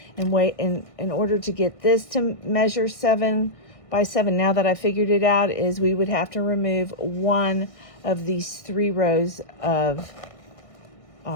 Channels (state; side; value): late; right; 1.6 ms